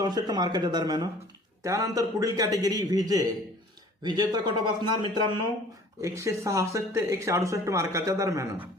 मार्काच्या दरम्यान. त्यानंतर पुढील कॅटेगरी व्हीजेचा कट ऑफ असणार मित्रांनो 166 ते 168 मार्काच्या दरम्यान.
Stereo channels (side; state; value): both; normal; correlation 0.50